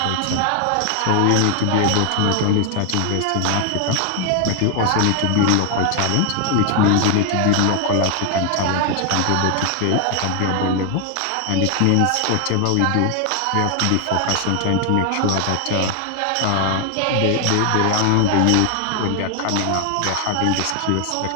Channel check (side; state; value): both; different; correlation 0.00